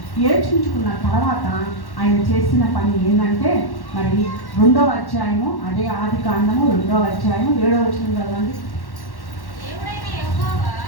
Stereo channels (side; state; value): right; late; 1.1 ms